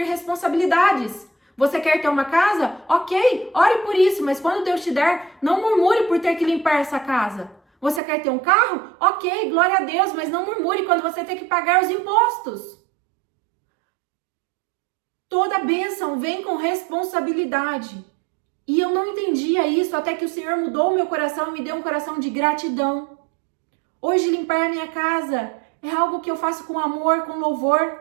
responsabilidades. Você quer ter uma casa? Ok, ore por isso, mas quando Deus te der, não murmure por ter que limpar essa casa. Você quer ter um carro? Ok, glória a Deus, mas não murmure quando você tem que pagar os impostos. Toda bênção vem com responsabilidade. E eu não entendia isso até que o Senhor mudou o meu coração e me deu um coração de gratidão. Hoje limpar a minha casa é algo que eu faço com amor, com louvor.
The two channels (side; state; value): left; drops out; at 8.0 s